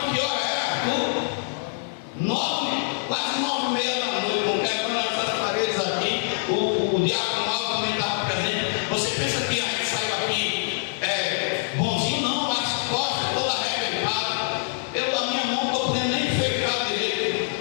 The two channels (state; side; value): silent; right; digital silence